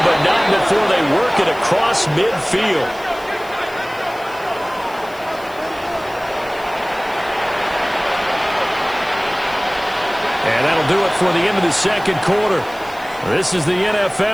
but not before they work it across midfield. And that'll do it for the end of the second quarter. This is the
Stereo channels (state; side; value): noise; left; hiss, 23 dB below the sound